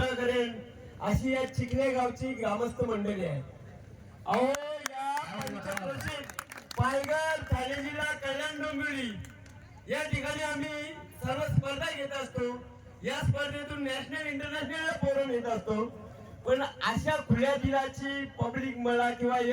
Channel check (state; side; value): identical; both; correlation 1.00